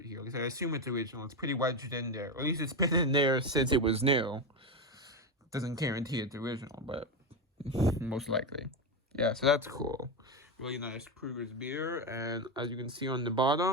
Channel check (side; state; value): both; normal; correlation 0.13